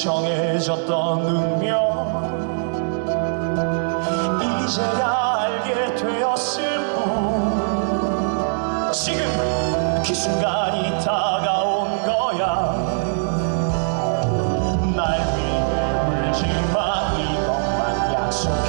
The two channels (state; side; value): silent; left; digital silence